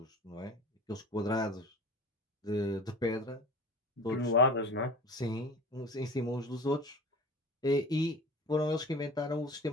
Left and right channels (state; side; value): normal; both; correlation 0.37